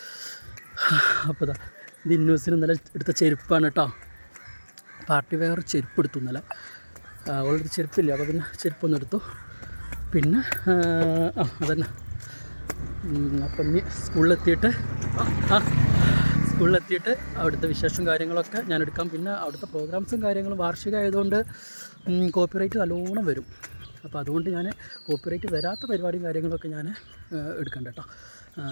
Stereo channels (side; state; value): both; inverted; correlation -1.00